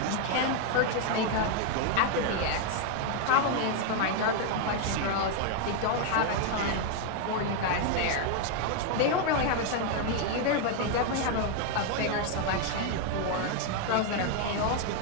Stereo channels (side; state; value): both; different; correlation 0.00